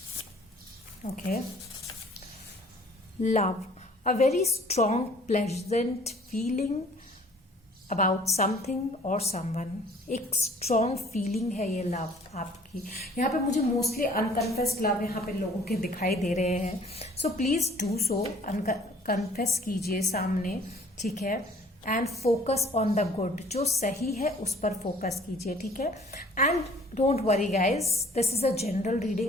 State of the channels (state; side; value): normal; both; correlation 0.54